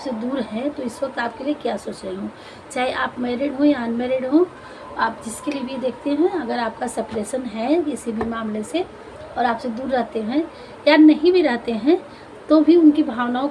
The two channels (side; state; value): both; identical; correlation 1.00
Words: दूर हैं तो इस वक्त आपके लिए क्या सोच रही हूँ। चाहे आप मैरिड हो या अनमैरिड हो, आप जिसके लिए भी देखते हैं, अगर आपका सेपरेशन है किसी भी मामले से और आपसे दूर रहते हैं या नहीं भी रहते हैं, तो भी उनकी भावनाओं